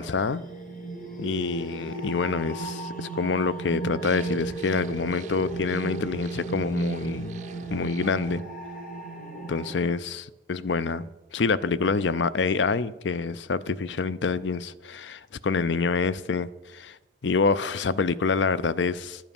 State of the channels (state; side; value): quieter; right; 3.5 dB